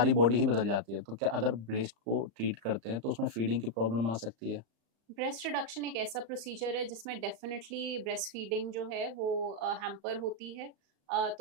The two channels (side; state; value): left; late; 35 ms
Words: बॉडी ही बदल जाती है, तो क्या अगर ब्रेस्ट को ट्रीट करते हैं तो उसमें फीडिंग की प्रॉब्लम आ सकती है? ब्रेस्ट रिडक्शन एक ऐसा प्रोसीजर है जिसमें डेफिनेटली ब्रेस्ट फीडिंग जो है वो हैम्पर होती है।